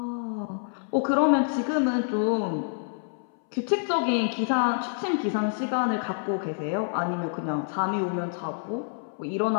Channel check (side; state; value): right; silent; 60 dB below the other